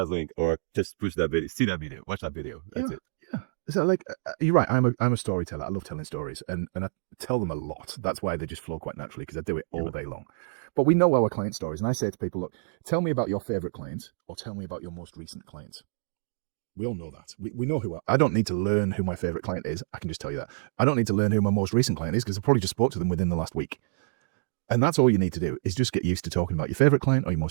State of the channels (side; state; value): left; silent; digital silence